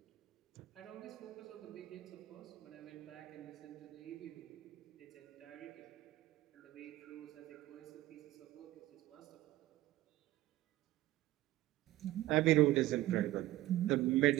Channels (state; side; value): quieter; left; 16.2 dB